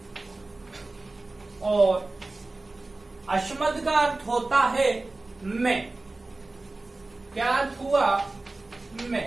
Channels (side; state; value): left; quieter; 3.1 dB